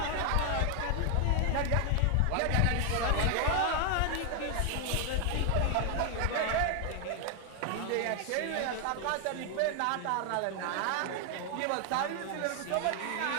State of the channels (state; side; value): different; both; correlation 0.00